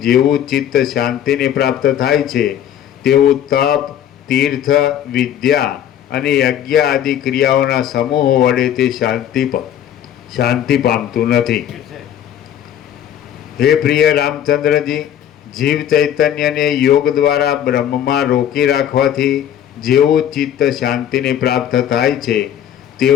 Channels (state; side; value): quieter; right; 10.3 dB